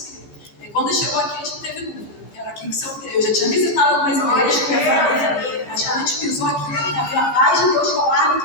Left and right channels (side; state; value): right; late; 15 ms